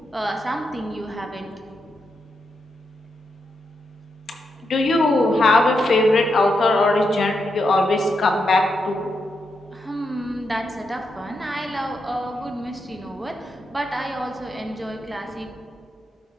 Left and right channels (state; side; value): normal; both; correlation 0.84